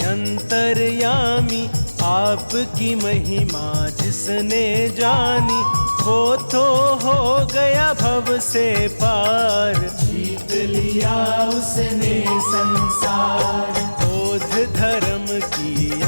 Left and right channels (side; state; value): both; inverted; correlation -1.00